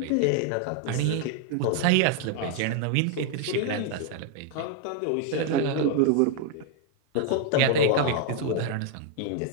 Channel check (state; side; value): different; both; correlation 0.00